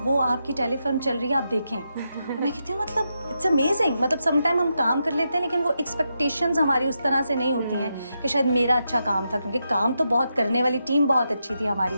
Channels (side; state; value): both; inverted; correlation -0.85